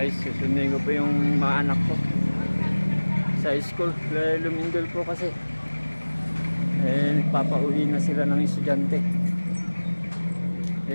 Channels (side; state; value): both; inverted; correlation -1.00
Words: susundin ko po yung mga anak ko sa school. Lumindol po kasi. Nagpapauwi na sila ng estudyante.